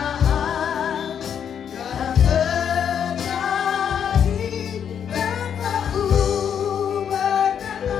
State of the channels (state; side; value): quieter; right; 8.3 dB